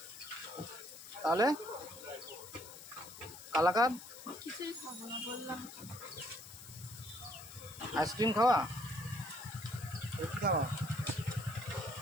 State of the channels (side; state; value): left; noise; hiss, 16 dB below the sound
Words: তাহলে কালাকাঁদ? কিছুই খাবো না বললাম। আইসক্রিম খাওয়া? কি খাওয়া?